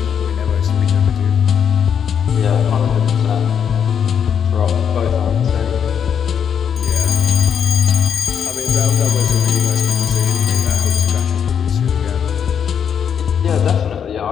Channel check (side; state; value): right; quieter; 7.8 dB